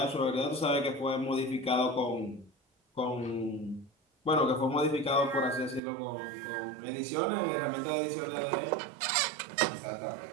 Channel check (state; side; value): drops out; left; at 5.8 s